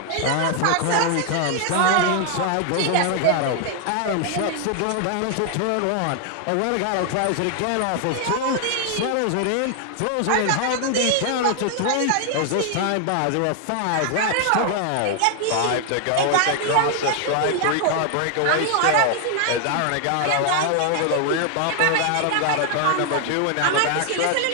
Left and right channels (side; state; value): both; different; correlation 0.00